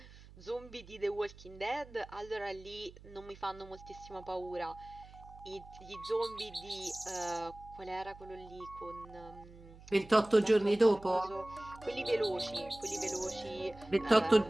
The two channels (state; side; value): noise; right; hum, 19 dB below the sound